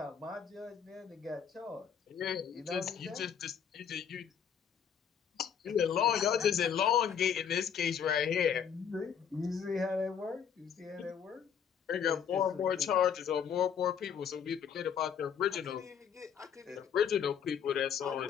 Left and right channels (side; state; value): right; quieter; 7.9 dB